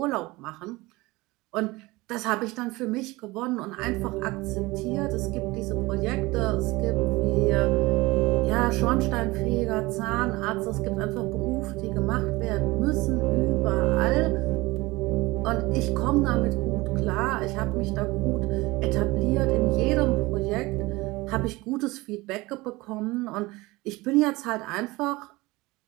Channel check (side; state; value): left; quieter; 21.7 dB